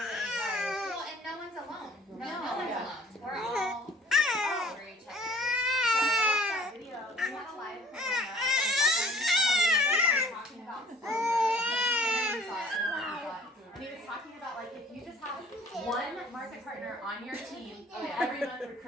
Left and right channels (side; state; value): both; normal; correlation 0.53